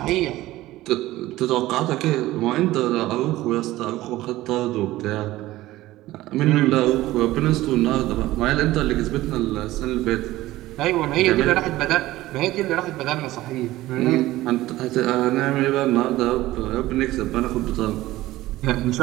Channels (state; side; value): quieter; left; 16.7 dB